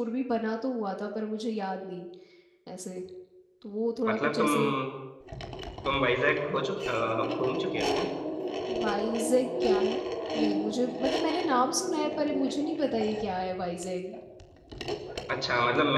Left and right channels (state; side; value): identical; both; correlation 1.00